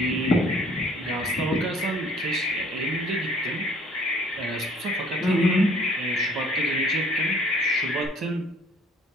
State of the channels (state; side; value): normal; both; correlation 0.56